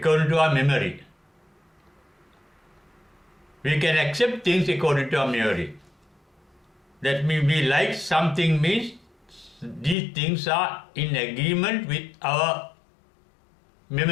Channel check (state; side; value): drops out; right; at 10.0 s